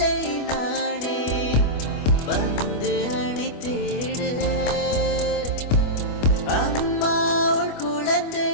நானே, வந்து அணைத்திடு. அம்மா உன் குழந்தை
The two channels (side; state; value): right; late; 25 ms